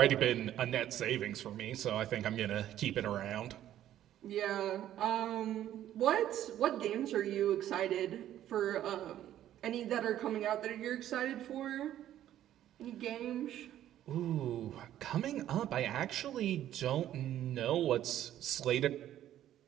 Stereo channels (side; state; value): left; quieter; 12.0 dB